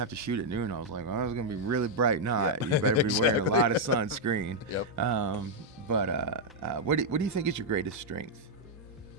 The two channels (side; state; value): both; normal; correlation -0.02